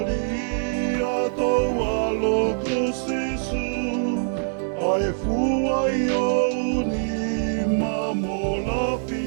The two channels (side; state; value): left; silent; 63 dB below the other